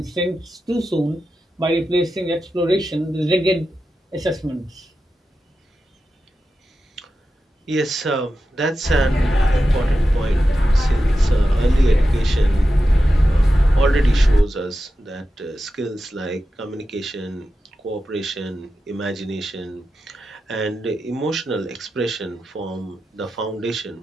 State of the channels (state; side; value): normal; both; correlation 0.91